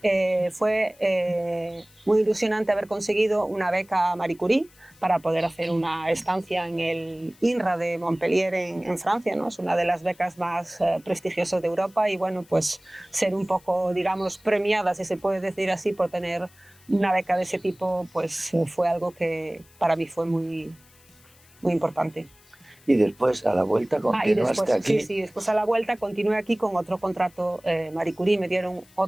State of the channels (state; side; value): noise; left; hiss, 28 dB below the sound